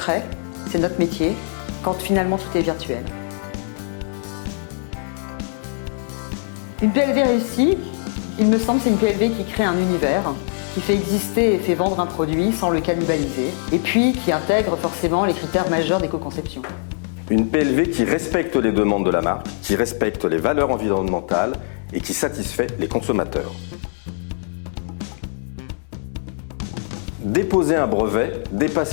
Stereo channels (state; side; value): silent; right; digital silence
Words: c'est notre métier, quand finalement tout est virtuel. Une PLV réussie, il me semble, c'est une PLV qui crée un univers, qui fait exister et fait vendre un produit sans le cannibaliser, et puis qui intègre forcément les critères majeurs d'éco-conception. Une PLV qui respecte les demandes de la marque, qui respecte les valeurs environnementales et qui satisfait les consommateurs. Déposer un brevet,